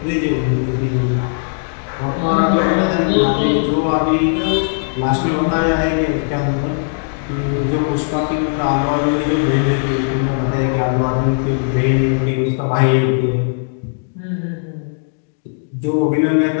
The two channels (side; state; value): right; silent; digital silence